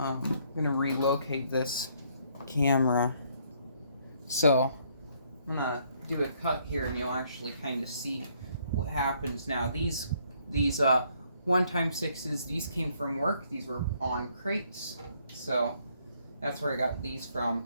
gonna relocate this camera. So I'm gonna do a cut here, and you'll actually kind of see what happens now. These 1x6s, these came from work. These were on crates, so that's where I got these from.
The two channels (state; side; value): inverted; both; correlation -0.68